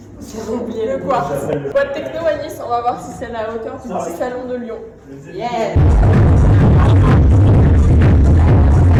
J'ai oublié le quartz. Boîte techno à Nice, on va voir si c'est à la hauteur du petit salon de Lyon. Yeah.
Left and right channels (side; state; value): both; identical; correlation 1.00